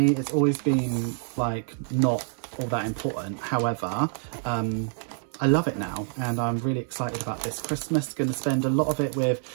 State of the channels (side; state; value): left; silent; 60 dB below the other